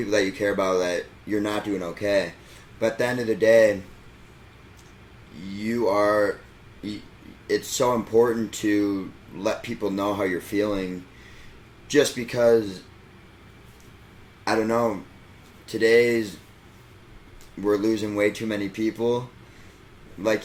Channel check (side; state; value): both; identical; correlation 1.00